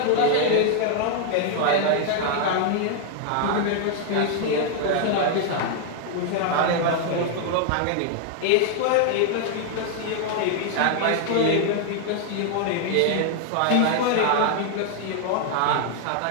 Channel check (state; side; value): different; both; correlation 0.00